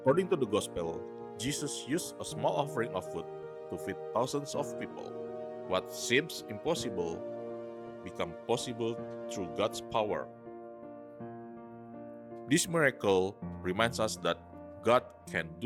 to the Gospel, Jesus used a small offering of food to feed thousands of people. What seems impossible becomes possible through God's power. This miracle reminds us that God can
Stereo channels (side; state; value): both; identical; correlation 1.00